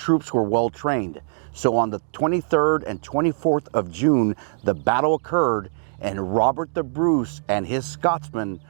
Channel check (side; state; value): left; silent; digital silence